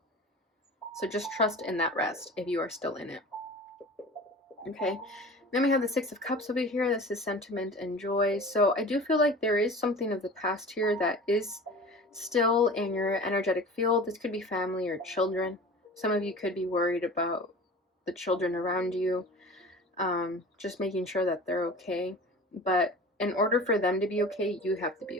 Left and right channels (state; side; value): normal; both; correlation 0.39